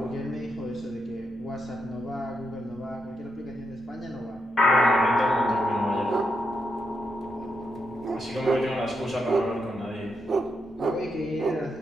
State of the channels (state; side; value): normal; both; correlation 0.82